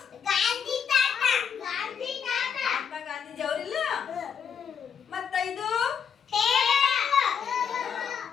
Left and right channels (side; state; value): right; quieter; 7.3 dB